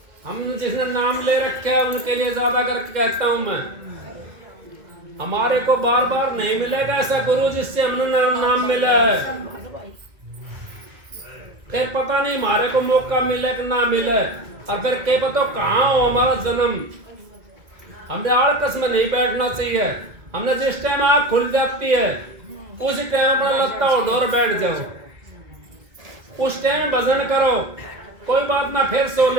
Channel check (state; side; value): late; left; 2.0 ms